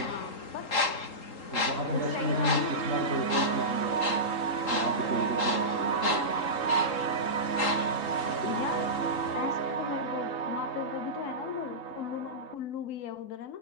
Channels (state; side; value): late; right; 3.8 ms